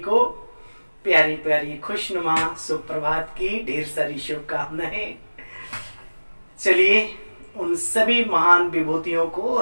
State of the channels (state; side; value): inverted; both; correlation -1.00